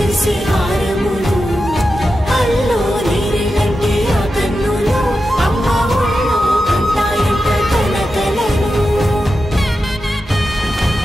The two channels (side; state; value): both; normal; correlation 0.90